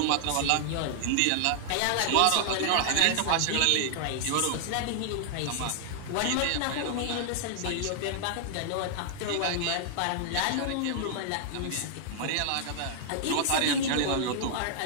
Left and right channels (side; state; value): both; different; correlation -0.01